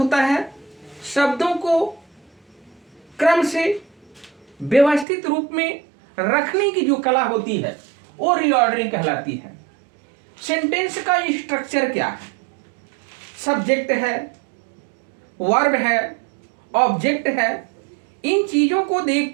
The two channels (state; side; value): drops out; left; at 5.1 s